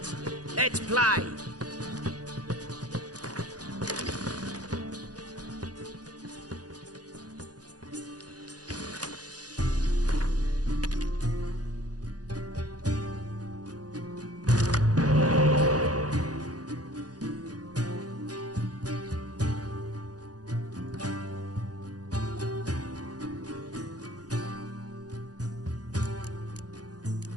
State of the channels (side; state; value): left; late; 0.68 ms